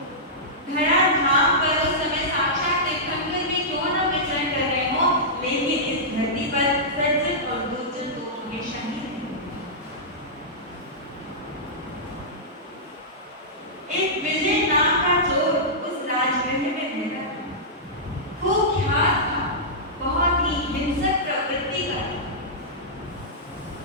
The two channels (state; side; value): normal; both; correlation -0.14